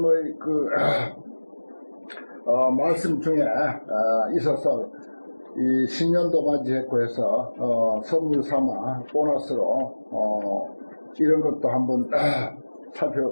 말씀 중에 있어서 이 신년도 맞이했고 해서 선물 삼아 보너스로 이런 것도 한번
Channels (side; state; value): both; inverted; correlation -1.00